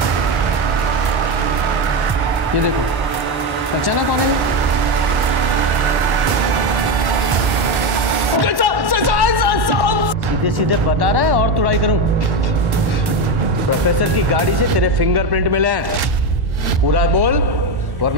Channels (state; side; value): late; left; 1.1 ms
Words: ये देखो, पहचाना कौन है? सीधे सीधे बता रहा है और तुड़ाई करूं? प्रोफेसर की गाड़ी से तेरे फिंगरप्रिंट मिले हैं, पूरा बोल